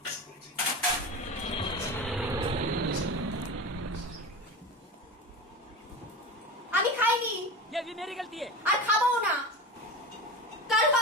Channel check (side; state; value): both; normal; correlation 0.27